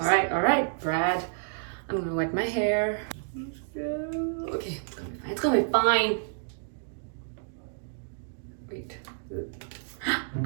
right, Brad. I'm gonna wet my hair. Okay, it's gonna be fine. Wait.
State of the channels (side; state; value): left; silent; digital silence